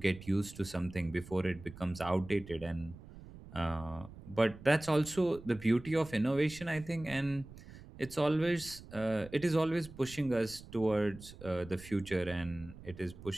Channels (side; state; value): right; noise; rumble, 17 dB below the sound